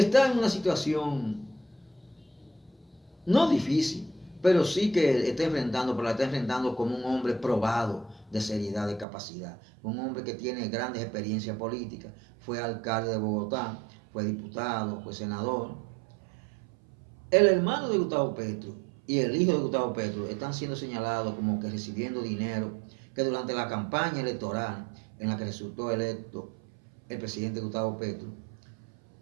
en una situación no difícil, pero sí que pero la está enfrentando como un hombre probado de seriedad, de capacidad, un hombre que tiene grandes experiencias políticas, fue alcalde de Bogotá, fue diputado, fue senador. El hermano de Gustavo Petro y el hijo de Gustavo Petro están siendo señalados como que recibiendo dinero que durante la campaña electoral en la que resultó electo el presidente Gustavo Petro,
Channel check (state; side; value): drops out; left; at 9.1 s